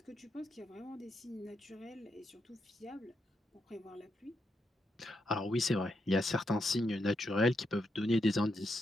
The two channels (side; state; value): both; normal; correlation 0.82